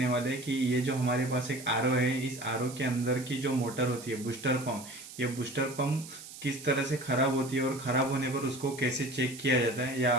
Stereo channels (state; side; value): noise; right; hiss, 15 dB below the sound